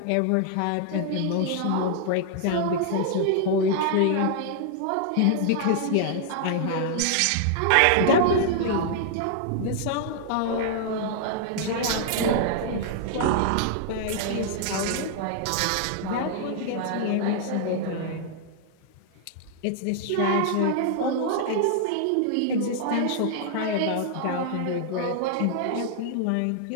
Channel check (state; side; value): different; both; correlation -0.01